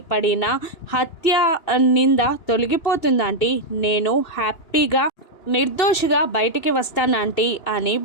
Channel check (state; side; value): late; right; 2.9 ms